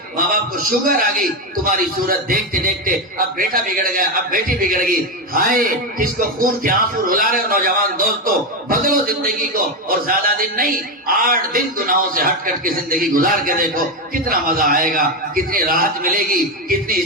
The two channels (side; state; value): both; normal; correlation 0.11